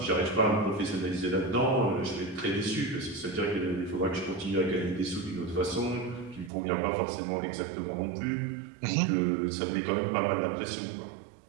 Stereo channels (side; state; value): left; drops out; at 6.5 s